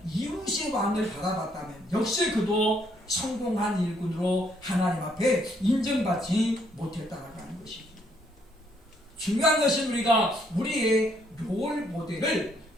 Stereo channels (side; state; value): both; normal; correlation 0.70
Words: 이웃의 왕을 바라봤다면 역시 그도 성공한 일꾼으로 하나님 앞에 인정받지 못했다라고 하는 것이죠. 중요한 것은 우리가 우리의 롤 모델을